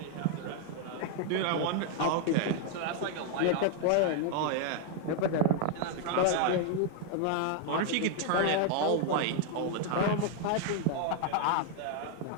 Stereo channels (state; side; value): different; both; correlation 0.00